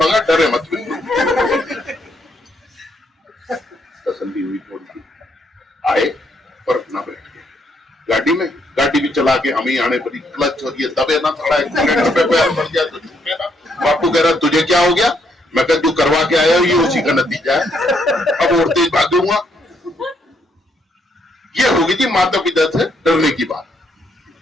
डरे मत। तसल्ली हुई थोड़ी सी, आए और अपना बैठ गए गाड़ी में, गाड़ी भी चला के हमें आने पड़ी, क्लच और ये दबे ना थोड़ा एक्सीडेंट पे पैर पड़ गया तो छूटे ना। बापू कह रहा तुझे क्या हो गया? मैं कह तू करवा के आया ये उसी का नतीजा है, अब और तेज भागूंगा। ये होगी थी माता पिता से डरने की बात।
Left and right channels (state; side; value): normal; both; correlation 0.73